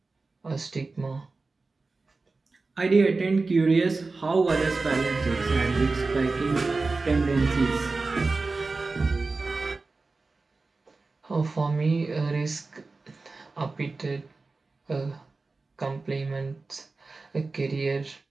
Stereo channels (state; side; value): quieter; left; 3.7 dB